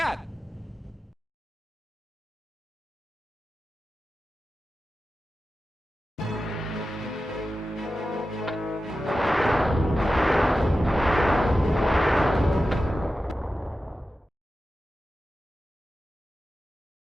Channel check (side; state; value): both; normal; correlation 0.93